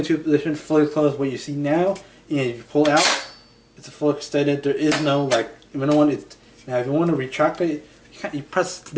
2 positions, fully closed. What you see now, and if you pull out, it's a full extended. There is no now if you want to retract it, you press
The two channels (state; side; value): identical; both; correlation 1.00